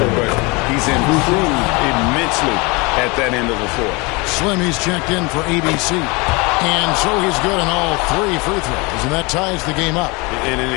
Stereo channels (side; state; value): right; quieter; 27.0 dB